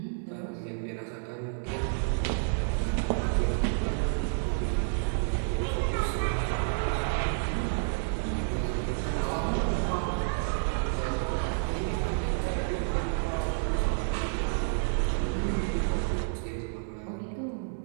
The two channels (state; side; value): silent; left; digital silence